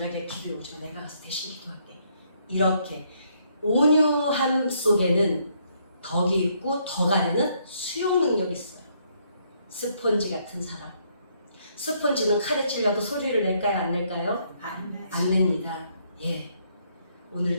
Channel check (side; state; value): both; inverted; correlation -0.71